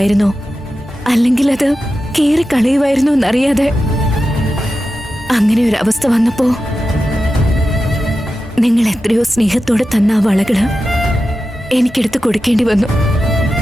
അല്ലെങ്കിൽ അത് കീറി കളയുമായിരുന്നോ എന്നറിയാതെ അങ്ങനെ ഒരു അവസ്ഥ വന്നപ്പോ നിങ്ങൾ എത്രയോ സ്നേഹത്തോടെ തന്ന ആ വളകള് എനിക്കെടുത്ത് കൊടുക്കേണ്ടി വന്നു.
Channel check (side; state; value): both; normal; correlation 0.92